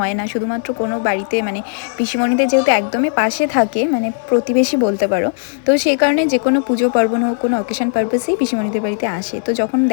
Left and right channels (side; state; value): right; silent; 68 dB below the other